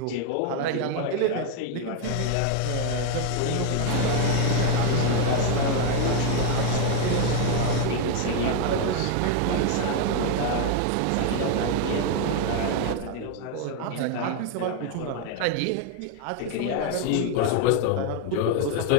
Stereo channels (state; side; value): different; both; correlation 0.01